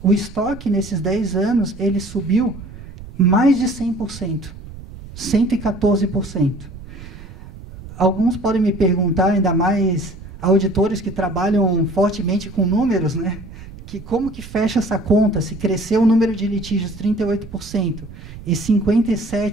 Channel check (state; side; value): noise; right; rumble, 15 dB below the sound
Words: O estoque, nesses 10 anos, ele subiu mais de 100%, 114%. Alguns podem me perguntar, ainda mais auditores que trabalham fortemente com números, né? Que como que fecha essa conta, se cresceu o número de litígios 38% e